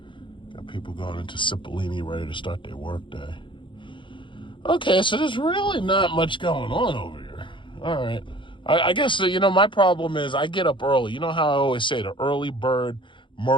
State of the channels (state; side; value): late; right; 0.24 ms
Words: Got people going into Cipollini ready to start their work day. Okay, so there's really not much going on over here. All right. I guess, my problem is I get up early. You know how I always say the early bird